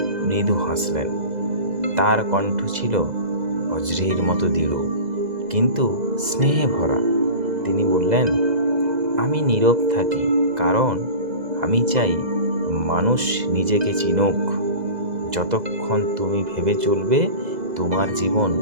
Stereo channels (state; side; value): late; left; 2.0 ms